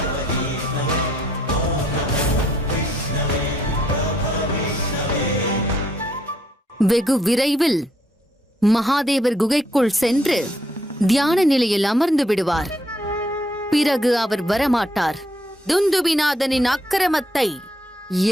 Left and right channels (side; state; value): both; normal; correlation 0.70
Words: வெகு விரைவில் மகாதேவர் குகைக்குள் சென்று தியான நிலையில் அமர்ந்து விடுவார். பிறகு அவர் வரமாட்டார். துந்துபிநாதனின் அக்கிரமத்தை